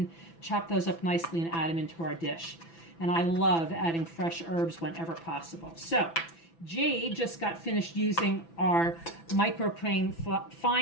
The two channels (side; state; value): right; late; 6.0 ms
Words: chop those up nicely and add them into our dish. And I love adding fresh herbs whenever possible. So Jade just got finished using our microplane